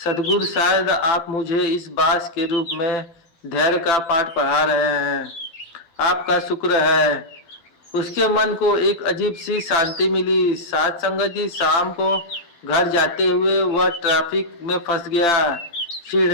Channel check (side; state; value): right; late; 12 ms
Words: शायद आप मुझे इस बास के रूप में धैर्य का पाठ पढ़ा रहे हैं, आपका शुक्र है। उसके मन को एक अजीब सी शांति मिली। साथ संगत जी, शाम को घर जाते हुए वह ट्रैफिक में फंस गया।